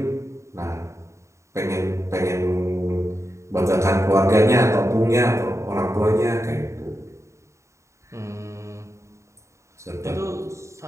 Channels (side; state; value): left; late; 0.14 ms